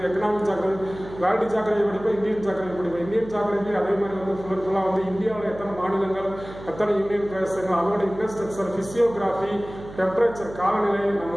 எக்கனாமிக் ஜாகிரபி. வேர்ல்டு ஜாகிரபி படிப்போம், இந்தியன் ஜாகிரபி படிப்போம். இந்தியன் ஜாகிரபி அதே மாதிரி வந்து ஃபுல்லாக வந்து இந்தியாவில் எத்தனை மாநிலங்கள், எத்தனை யூனியன் பிரதேசங்கள், அதோட இன்ஃப்ராஸ்ட்ரக்சர், பிசியோகிராஃபி, டெம்பரேச்சர், காலநிலை, நம்ம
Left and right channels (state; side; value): noise; right; hum, 15 dB below the sound